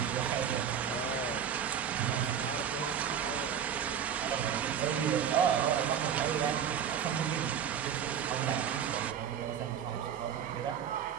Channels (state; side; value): quieter; left; 8.4 dB